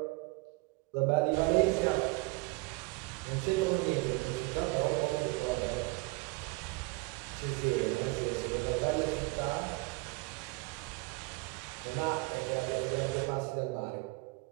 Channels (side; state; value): left; quieter; 25.0 dB